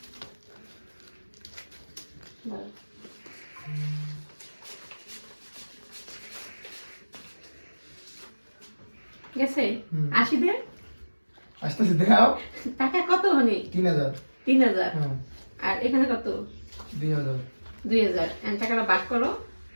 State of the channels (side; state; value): both; inverted; correlation -1.00